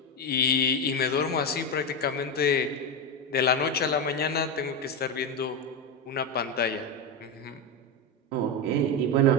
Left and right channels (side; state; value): both; normal; correlation 0.13